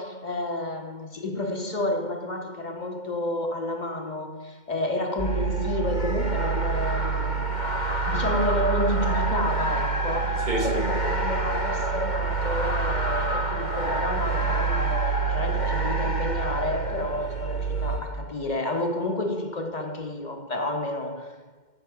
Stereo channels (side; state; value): right; late; 2.1 ms